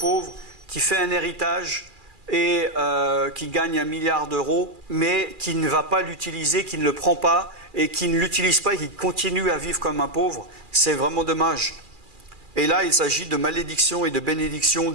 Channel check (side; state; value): left; late; 2.4 ms